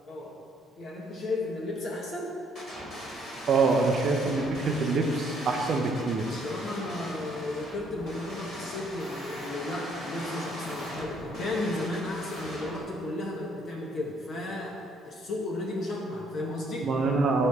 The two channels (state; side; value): normal; both; correlation 0.66